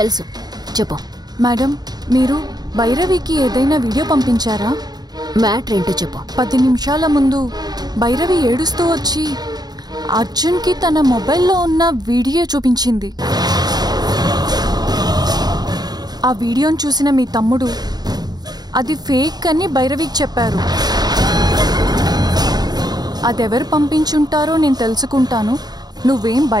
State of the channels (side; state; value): left; late; 0.19 ms